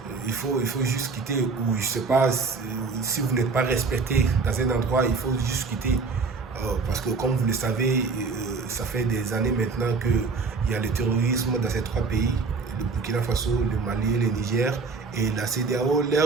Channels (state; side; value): quieter; left; 4.5 dB